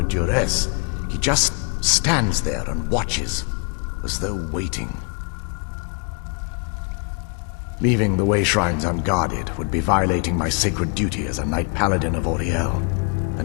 duress. He just stands there and watches, as though waiting. Leaving the way shrines unguarded would be violating my sacred duty as a Knight Paladin of Auriel,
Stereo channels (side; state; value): right; quieter; 38.6 dB